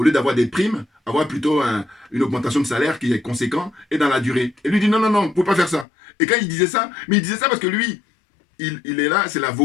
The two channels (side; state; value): right; drops out; at 5.9 s